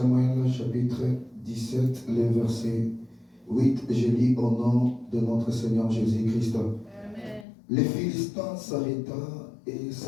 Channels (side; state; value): right; drops out; at 7.5 s